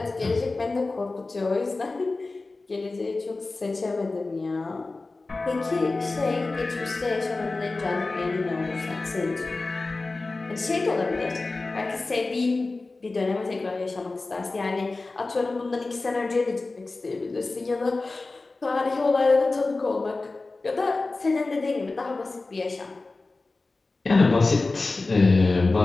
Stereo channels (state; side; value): quieter; right; 3.5 dB